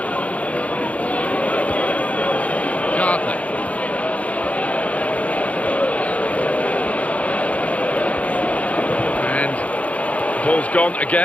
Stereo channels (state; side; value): late; right; 0.067 ms